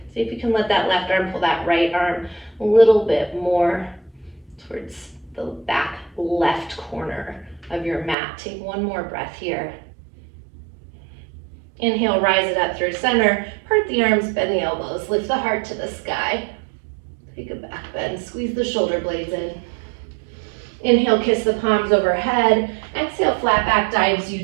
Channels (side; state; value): left; drops out; at 8.2 s